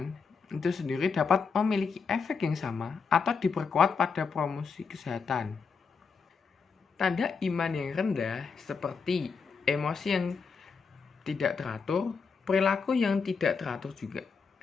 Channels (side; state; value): right; quieter; 5.4 dB